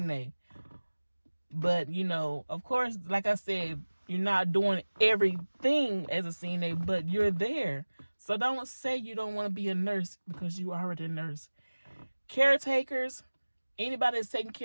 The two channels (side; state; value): both; inverted; correlation -1.00